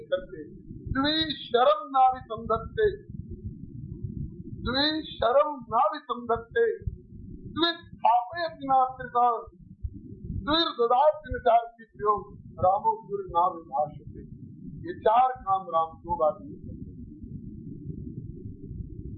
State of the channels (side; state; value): both; identical; correlation 1.00